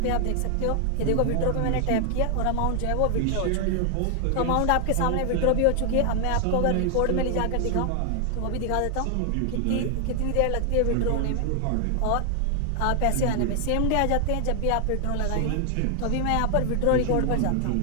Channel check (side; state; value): both; different; correlation 0.00